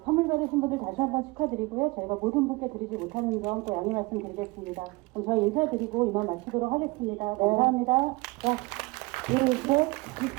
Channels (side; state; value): left; quieter; 24.2 dB